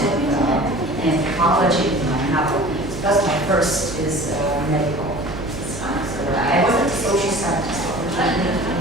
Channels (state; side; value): noise; right; hum, 11 dB below the sound